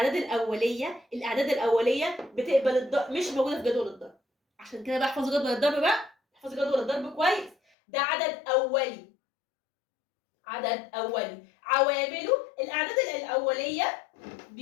الأولية بتقبل الضرب، مش موجودة في جدول الضرب. عشان كده بقى احفظوا جدول الضرب بقى، احفظوا جدول الضرب كويس. ده عدد أولي، عوامله الأعداد الأولية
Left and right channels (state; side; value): drops out; right; at 7.6 s